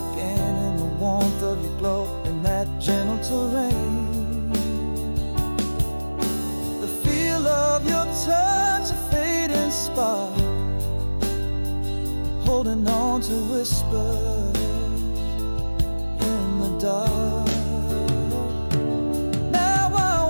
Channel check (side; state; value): both; inverted; correlation -1.00